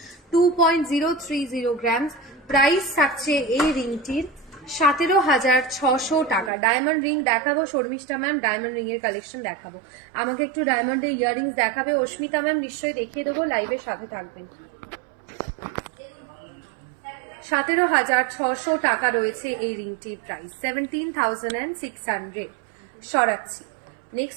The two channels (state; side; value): drops out; left; at 6.5 s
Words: 2.030 গ্রামস। প্রাইস থাকছে এই রিংটির 17,600 টাকা। ডায়মন্ড রিং দেখাবো শর্মিষ্ঠা ম্যাম। ডায়মন্ড রিং এর কালেকশন দেখাবো। আমাকে একটু ডায়মন্ডের ইয়াররিংস দেখাবে অস্মিতা ম্যাম। নিশ্চয়ই দেখিয়ে দেবো, লাইভের সাথে থাকবেন। 17,600 টাকা রয়েছে এই রিংটির প্রাইস। 17,600 সরাচ্ছি।